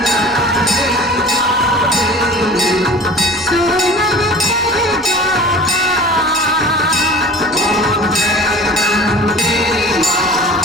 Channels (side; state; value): both; normal; correlation 0.42